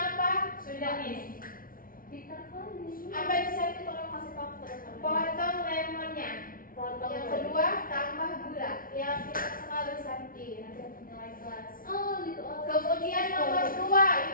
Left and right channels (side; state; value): right; late; 0.41 ms